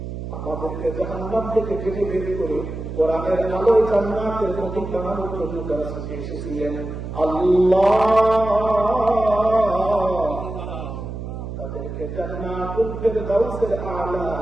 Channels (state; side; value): noise; right; hum, 8 dB below the sound